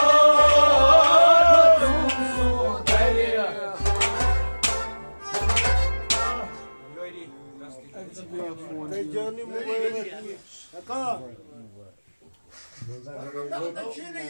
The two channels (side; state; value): both; inverted; correlation -1.00